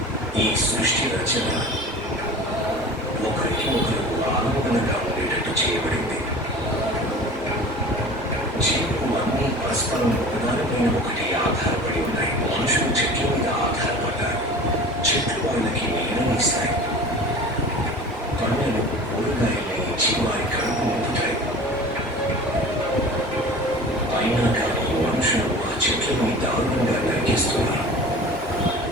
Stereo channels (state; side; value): normal; both; correlation 0.39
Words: ఈ సృష్టి రచన ఒకరికి ఒకరు ఆనందంగా ఉండేటట్టు చేయబడింది. జీవులు అన్నీ పరస్పరం ఒకదానిపైన ఒకటి ఆధారపడి ఉన్నాయి. మనుషులు చెట్ల మీద ఆధారపడ్డారు. చెట్లు వాళ్ళకి నీడనిస్తాయి, పండ్లను కూరగాయల్ని ఇచ్చి వారి కడుపు నింపుతాయి. అయినా కానీ మనుషులు ఆ చెట్లని దారుణంగా నరికేస్తున్నారు.